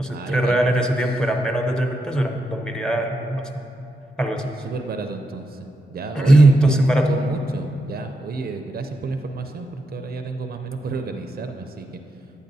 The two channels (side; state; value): both; normal; correlation 0.83